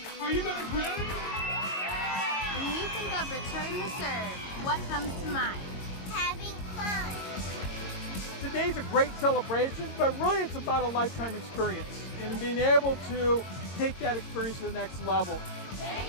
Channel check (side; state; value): right; late; 22 ms